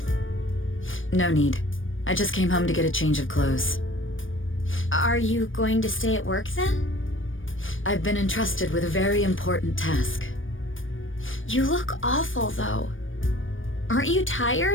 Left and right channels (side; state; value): right; late; 0.57 ms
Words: No need. I just came home to get a change of clothes. Are you going to stay at work then? I've been entrusted with a very important task. You look awful, though. Aren't you